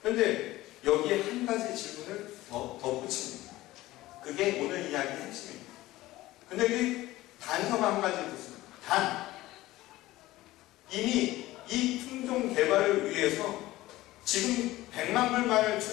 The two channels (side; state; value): right; quieter; 17.2 dB